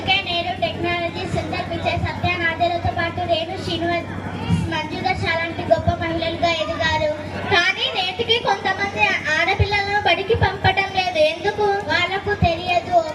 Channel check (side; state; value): both; identical; correlation 1.00